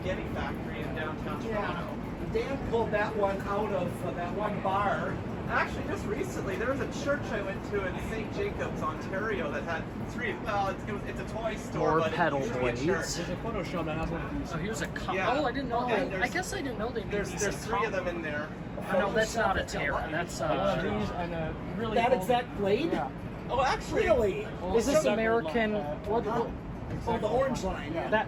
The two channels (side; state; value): both; identical; correlation 1.00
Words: factory in downtown Toronto. Yeah. Dan pulled that one out of that one bar. Actually, just recently, there was a church I went to in St. Jacobs, Ontario, that had 3. Well, it's a toy store, More but pedal it used to be a blades. church. There's a photo show that has one of these. So here's a cup. Yeah. Oh, I didn't know Yeah, that. there's- I guess I didn't know they made There's these in 3 of them copper. in there. No, that's not a Terra. That's One of these and a really That old- exact blade? Yeah. Oh, actually, Really? Is this Exactly American? like that. What? Oh, the orange line. Yeah. That?